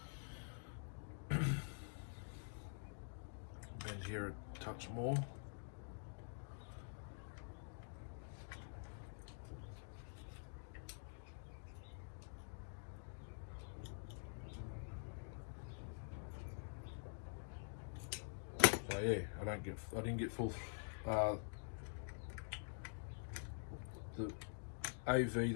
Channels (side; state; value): right; silent; digital silence